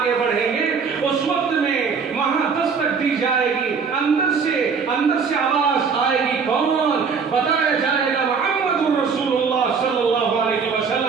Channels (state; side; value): quieter; left; 5.6 dB